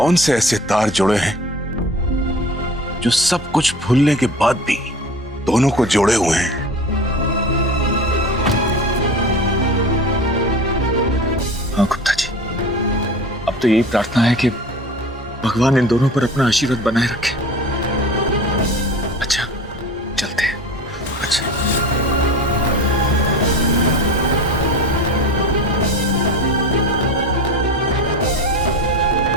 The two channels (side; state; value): both; normal; correlation 0.35